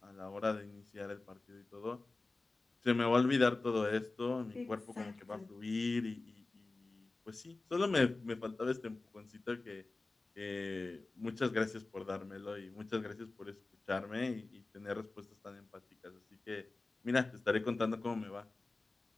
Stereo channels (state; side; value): quieter; right; 3.4 dB